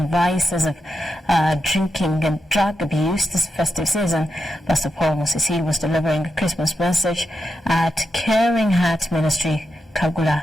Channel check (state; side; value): normal; both; correlation 0.87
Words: vices of drinking and drug abuse this festive season. Pastor Paul Musisi was delivering a Christmas message at Caring Heart Ministry,